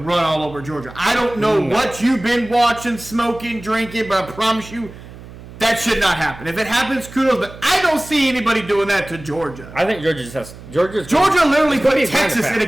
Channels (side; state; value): right; noise; hum, 17 dB below the sound